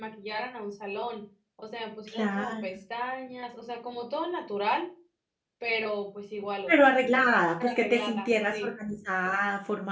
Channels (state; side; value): identical; both; correlation 1.00